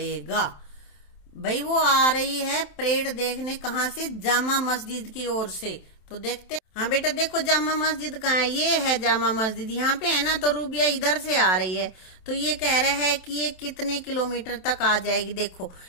भाई वो आ रही है परेड देखने, कहाँ से? जामा मस्जिद की ओर से। तो देखते, हाँ बेटा देखो जामा मस्जिद कहाँ है, ये है जामा मस्जिद, यहाँ पे है ना। तो रूबिया इधर से आ रही है, तो ये कह रहा है कि ये कितने किलोमीटर तक आ जाएगी। देखो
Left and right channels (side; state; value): right; late; 27 ms